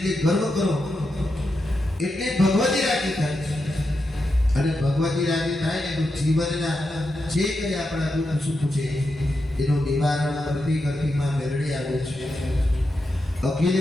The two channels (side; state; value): both; normal; correlation 0.87